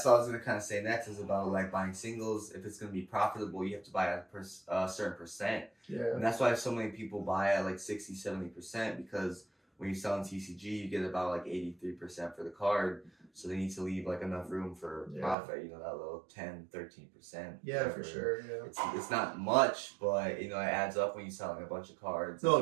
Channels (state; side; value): drops out; left; at 15.4 s